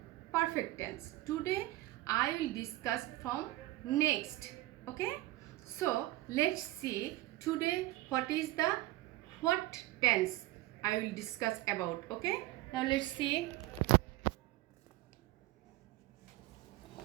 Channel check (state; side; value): quieter; left; 17.5 dB